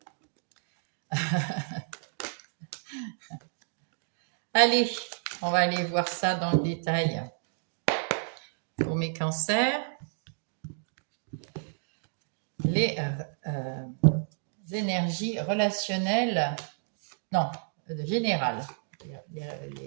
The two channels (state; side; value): silent; left; digital silence